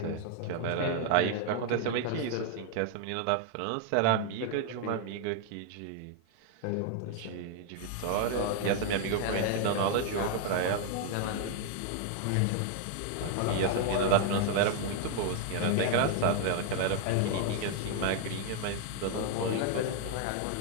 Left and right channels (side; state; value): both; different; correlation 0.00